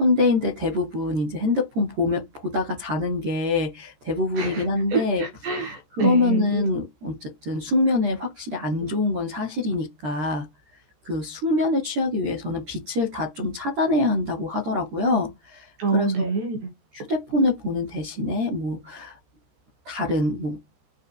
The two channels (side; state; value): left; late; 14 ms